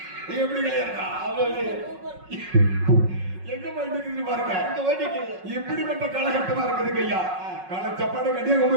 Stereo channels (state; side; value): late; left; 5.4 ms